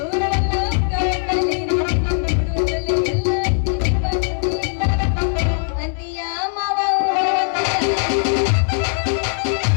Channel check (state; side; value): silent; right; 66 dB below the other